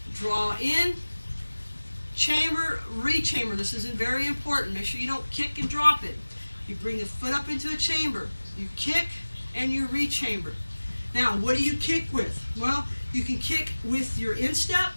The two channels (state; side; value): inverted; both; correlation -1.00